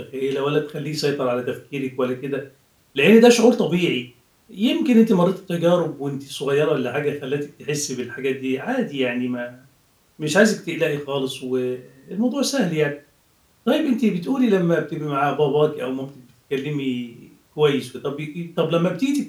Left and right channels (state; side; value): identical; both; correlation 1.00